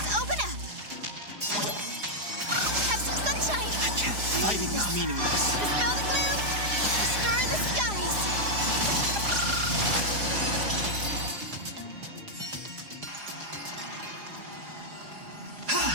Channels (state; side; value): late; left; 4.9 ms